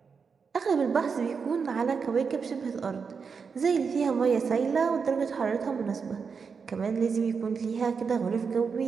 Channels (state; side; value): quieter; left; 5.7 dB